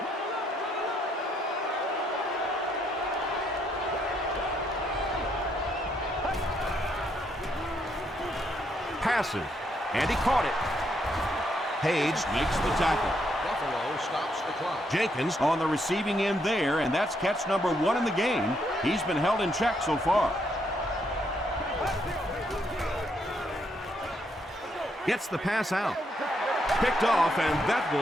Passes, and he caught it. Page makes the tackle. Buffalo stops the clock. Jenkins on the receiving end there, and that's catch number 1 in the game. He's been held in check so far. Gets the pass out. Picked off, and that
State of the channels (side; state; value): both; normal; correlation 0.75